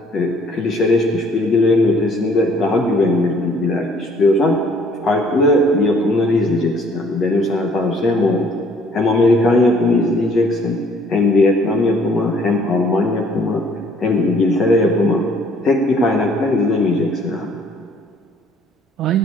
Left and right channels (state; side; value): normal; both; correlation 0.60